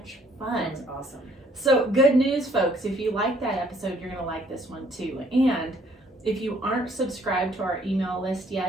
fun. That was awesome. So good news, folks. If you like that episode, you're going to like this one too. And if you aren't subscribed to our email list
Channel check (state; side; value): normal; both; correlation 0.62